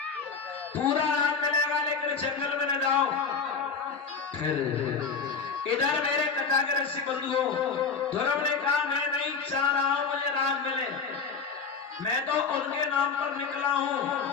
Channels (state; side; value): quieter; right; 5.3 dB